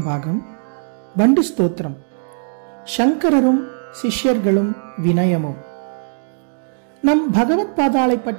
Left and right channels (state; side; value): silent; left; digital silence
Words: பாகம். வண்டு ஸ்தோத்திரம். சங்கரரும் சிஷ்யர்களும் வினயமும். நம் பகவத் பாதாளை